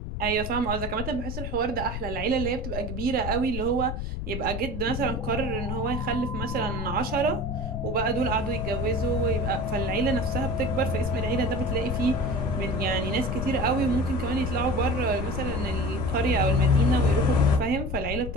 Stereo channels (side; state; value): left; noise; rumble, 5 dB below the sound